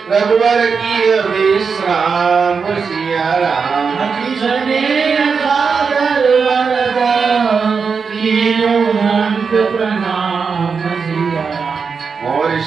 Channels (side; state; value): left; quieter; 5.5 dB